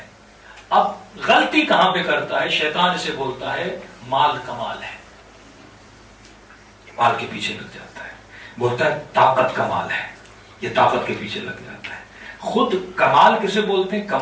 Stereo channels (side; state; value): both; identical; correlation 1.00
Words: اب غلطی کہاں پہ کرتا ہے شیطان؟ اسے بولتا ہے مال کمال ہے, مال کے پیچھے لگ جاتا ہے. بولتا ہے طاقت کمال ہے, یہ طاقت کے پیچھے لگ جاتا ہے. خود کمال کسے بولتے ہیں؟